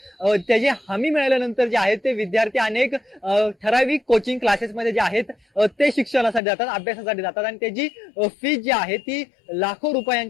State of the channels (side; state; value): right; drops out; at 6.4 s